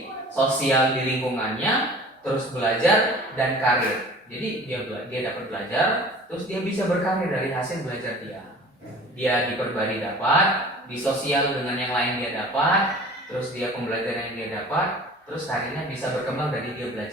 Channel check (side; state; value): both; normal; correlation 0.44